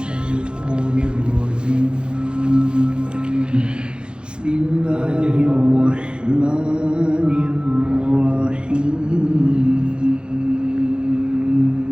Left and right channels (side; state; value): left; late; 0.052 ms